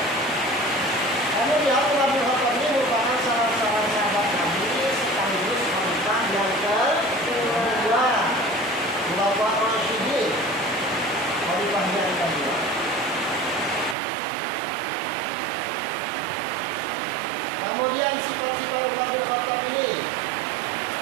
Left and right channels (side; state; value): left; drops out; at 14.0 s